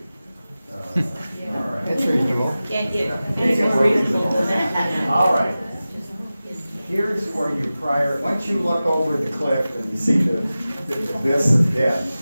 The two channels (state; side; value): inverted; both; correlation -0.96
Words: All right. It's reasonable. Can't get All right. Here's where once you look over the cliff and you see the abyss of death,